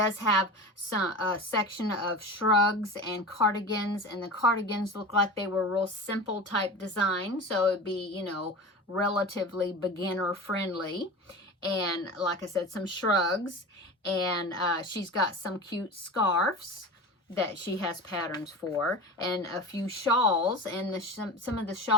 have some section of shrugs and cardigans, and the cardigans look like they were real simple type design, so it'd be, you know, relatively beginner friendly. And like I said, some shrugs, and she's got some cute scarves that she has patterns for, and a few shawls, and some of the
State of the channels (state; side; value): normal; both; correlation 0.31